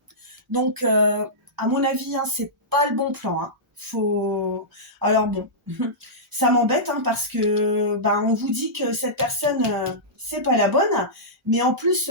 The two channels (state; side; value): normal; both; correlation -0.15